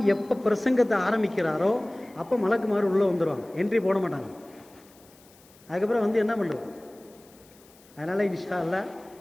எப்போ பிரசங்கத்தை ஆரம்பிக்கிறாரோ அப்போ மலக்குமார் உள்ளே வந்துடுவாங்க, என்ட்ரி போட மாட்டாங்க. அதுக்கப்புறம் வந்து என்ன பண்ணுறது? அதனால் இன்ஷா அல்லாஹ்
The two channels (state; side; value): noise; left; hiss, 27 dB below the sound